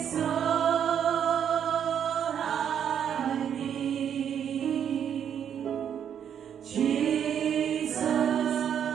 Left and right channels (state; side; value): quieter; left; 8.7 dB